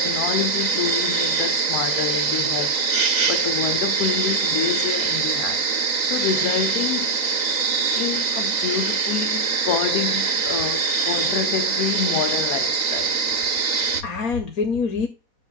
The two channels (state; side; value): late; right; 3.9 ms